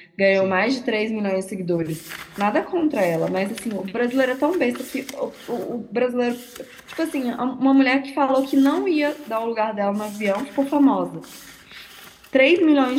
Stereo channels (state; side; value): identical; both; correlation 1.00